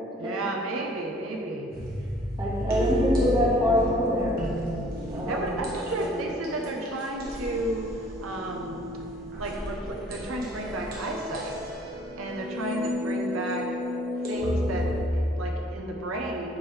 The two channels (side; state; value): both; normal; correlation 0.56